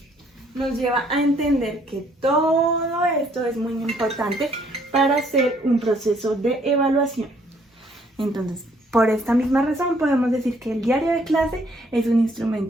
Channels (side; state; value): both; normal; correlation 0.65